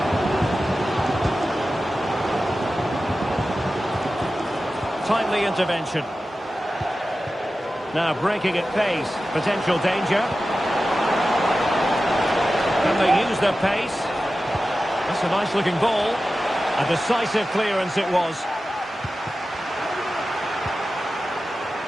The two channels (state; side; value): normal; both; correlation 0.94